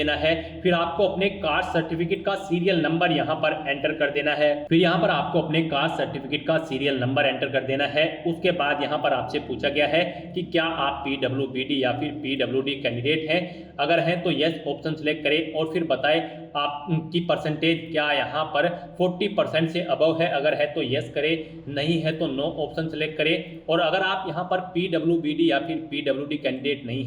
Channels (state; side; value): identical; both; correlation 1.00